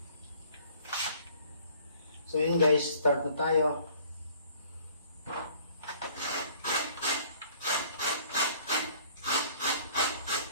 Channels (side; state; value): both; inverted; correlation -0.56